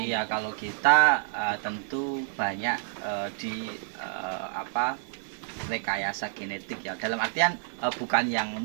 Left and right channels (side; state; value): left; silent; 59 dB below the other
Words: iya, kalau kita tentu banyak di rekayasa genetik ya. Dalam artian bukan yang